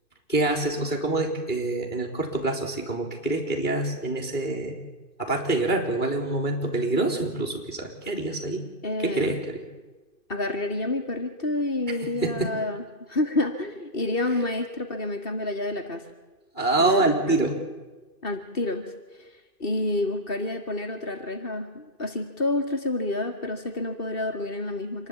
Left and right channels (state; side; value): late; right; 2.3 ms